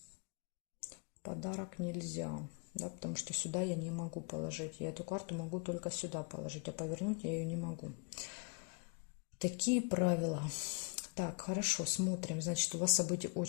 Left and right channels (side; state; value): right; quieter; 34.4 dB